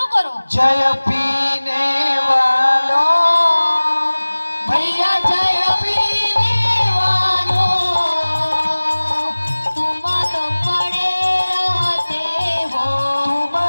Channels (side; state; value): both; inverted; correlation -1.00